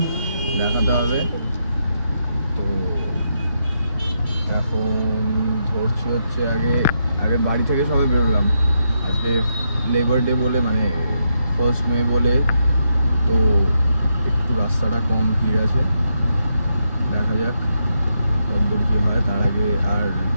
দেখাতে হবে। তো এখন ধরছি হচ্ছে আগে বাড়ি থেকে সবে বেরোলাম, আজকে লেবার ডে বলে, মানে 1 মে বলে, তো একটু রাস্তাটা কম ভিড় আছে, দেখা যাক কতদূর কী হয়। তার আগে আর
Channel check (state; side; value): inverted; both; correlation -0.81